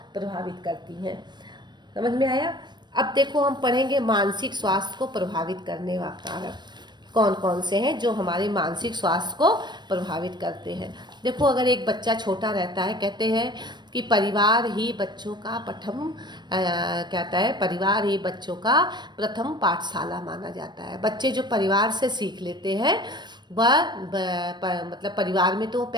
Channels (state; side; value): late; left; 0.21 ms